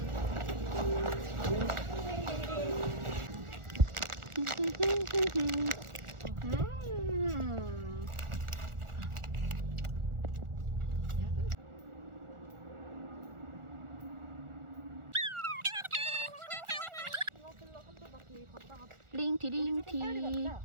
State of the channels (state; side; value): late; left; 1.4 ms